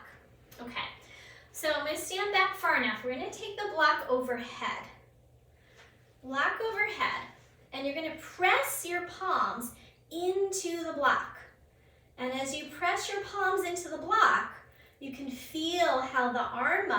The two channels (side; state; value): both; identical; correlation 1.00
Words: Okay, so I'm going to stand back far enough. We're going to take the block overhead. Block overhead. And you're going to press your palms into the block. And as you press your palms into the block, you can feel how the arm